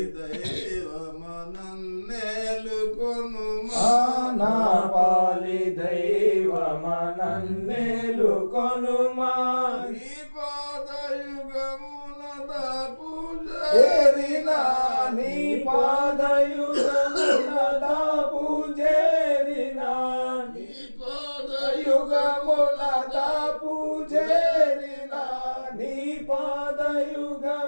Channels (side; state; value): both; inverted; correlation -1.00